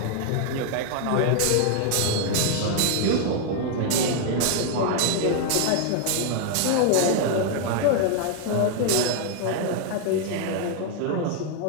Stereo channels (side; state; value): both; different; correlation 0.00